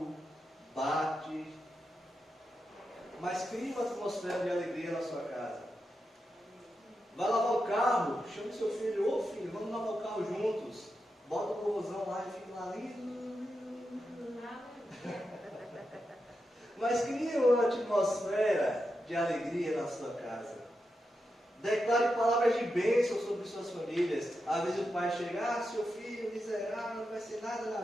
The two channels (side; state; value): both; normal; correlation 0.87